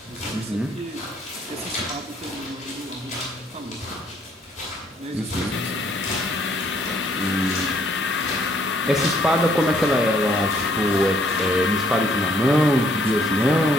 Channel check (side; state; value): both; normal; correlation 0.65